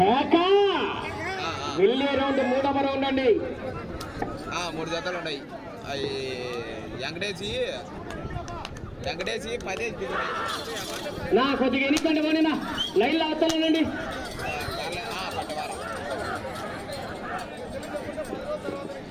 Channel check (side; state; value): both; identical; correlation 1.00